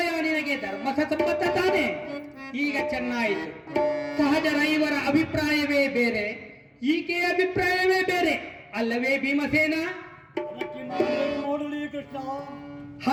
ನಿನಗೆ ಧರ್ಮಸಮ್ಮತ ತಾನೆ? ಈಗ ಚೆನ್ನಾಯಿತು. ಸಹಜರ ಐವರ ಅಭಿಪ್ರಾಯವೇ ಬೇರೆ, ಈಕೆಯ ಅಭಿಪ್ರಾಯವೇ ಬೇರೆ ಅಲ್ಲವೇ ಭೀಮಸೇನ?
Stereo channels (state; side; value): identical; both; correlation 1.00